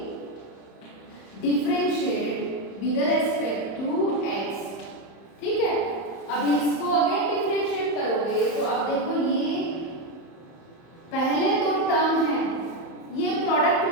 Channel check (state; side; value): late; right; 30 ms